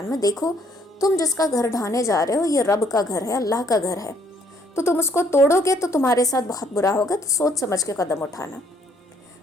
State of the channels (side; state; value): both; normal; correlation 0.65